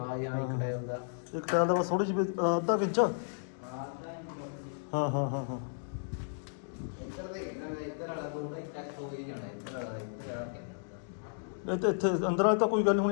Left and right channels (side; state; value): right; silent; digital silence